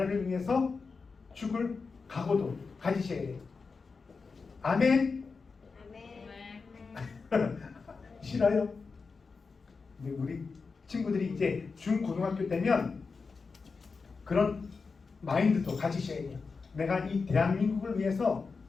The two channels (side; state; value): right; quieter; 4.7 dB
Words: 위해서 죽을 각오도 가지셔야 돼요. 아멘? 싫어요? 근데 우리 친구들이 이제 중고등학교 때면 그런 마인드도 가지셔야 돼요. 내가 이 대한민국을 위해서